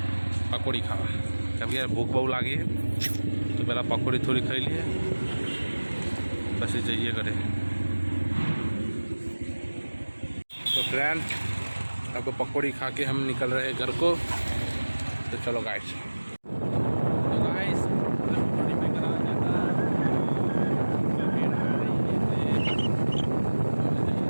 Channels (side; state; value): both; inverted; correlation -1.00